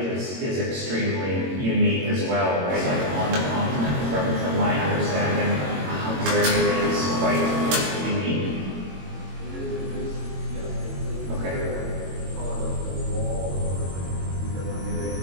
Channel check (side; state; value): left; late; 22 ms